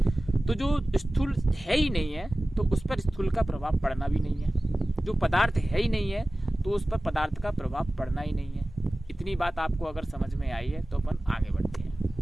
तो जो स्थूल है ही नहीं है तो उस पर स्थूल का प्रभाव पड़ना भी नहीं है। जो पदार्थ है ही नहीं है तो उस पर पदार्थ का प्रभाव पड़ना ही नहीं है। इतनी बात आपको अगर समझ में आई है तो अपन आगे बढ़ते हैं।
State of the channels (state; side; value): normal; both; correlation 0.97